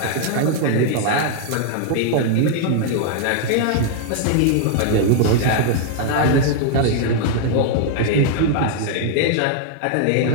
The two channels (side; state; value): both; different; correlation -0.01